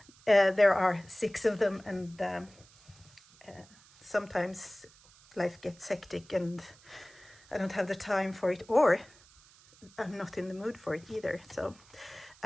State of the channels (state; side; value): noise; right; hiss, 26 dB below the sound